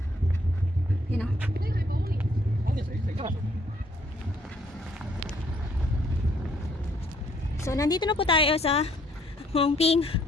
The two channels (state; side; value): normal; both; correlation 0.66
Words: You know. So nandito na po tayo sa Hongping.